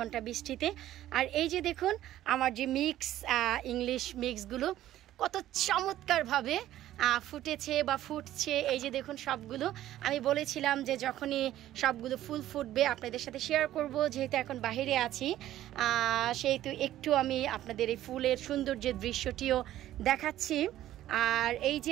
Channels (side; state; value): left; quieter; 13.4 dB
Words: বৃষ্টিতে। আর এই যে দেখুন আমার যে মিক্স ইংলিশ মিক্সগুলো কত চমৎকারভাবে ফুটেছে বা ফুটছে। এই যে দেখুন সবগুলো আমি বলেছিলাম যে যখনই সবগুলো ফুল ফুটবে আপনাদের সাথে শেয়ার করব, যেহেতু এখন বাইরে আছি সেহেতু একটু আমি আপনাদের এই ফুলের সৌন্দর্যের দৃশ্যটিও দেখাচ্ছি। আর এই